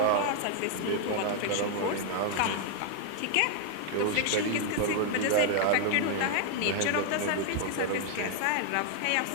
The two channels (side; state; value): both; different; correlation 0.00